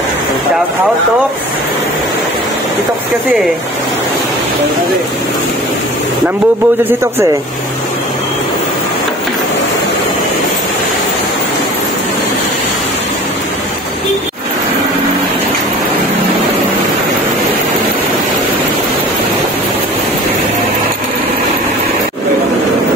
Shout out, Tox. Si Tox kasi eh. Nambubudol si Tox eh.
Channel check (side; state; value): both; normal; correlation 0.42